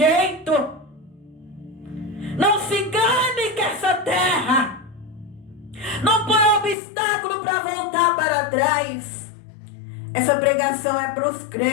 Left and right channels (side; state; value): right; drops out; at 6.8 s